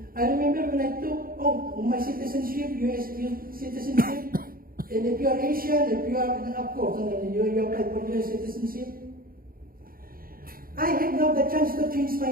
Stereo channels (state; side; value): late; left; 0.42 ms